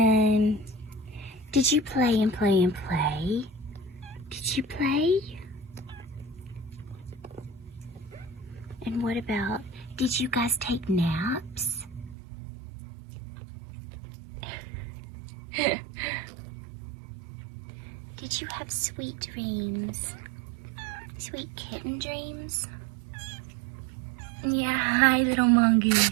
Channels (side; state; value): left; drops out; at 12.2 s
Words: did you play and play and play? Did you play? And what about, did you guys take naps? Did you have sweet dreams? Sweet kitten dreams? Yeah, hi little mongoose.